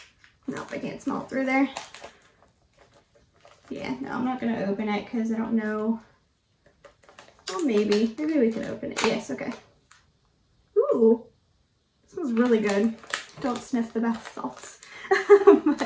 Nope, I can't smell it through there. Yeah, no, I'm not going to open it because I don't know. Well, maybe we can open it. Yes, okay. Ooh, this smells really good. Don't sniff the bath salts. But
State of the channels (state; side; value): identical; both; correlation 1.00